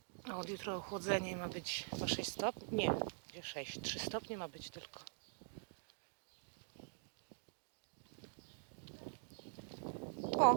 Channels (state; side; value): silent; left; digital silence